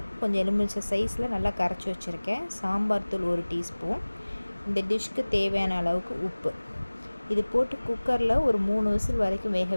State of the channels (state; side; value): inverted; both; correlation -1.00